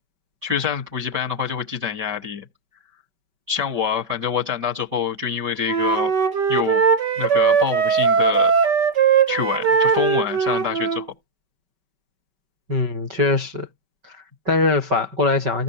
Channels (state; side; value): late; left; 5.2 ms